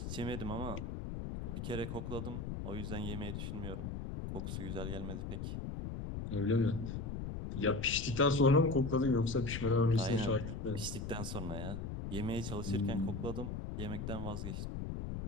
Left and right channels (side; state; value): left; noise; rumble, 5 dB below the sound